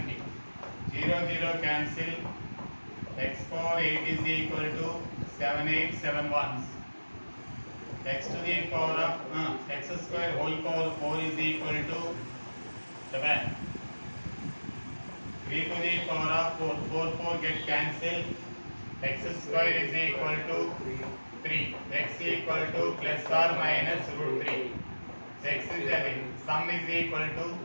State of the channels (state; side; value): inverted; both; correlation -1.00